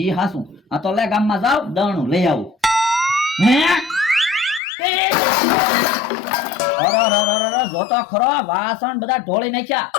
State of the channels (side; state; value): right; drops out; at 4.6 s